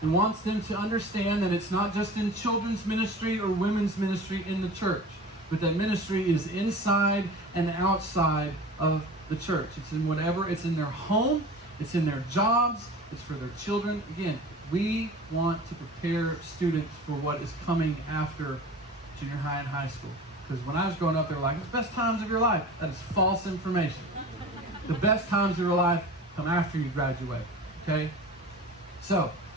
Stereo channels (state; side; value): normal; both; correlation 0.38